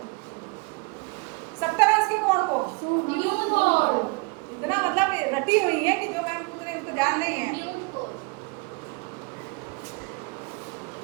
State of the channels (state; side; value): quieter; left; 28.4 dB